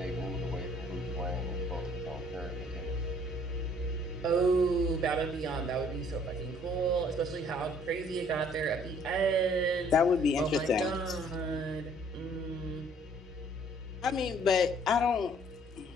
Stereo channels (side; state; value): both; normal; correlation 0.59